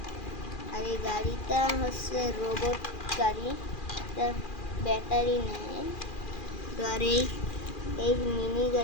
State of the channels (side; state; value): right; late; 2.4 ms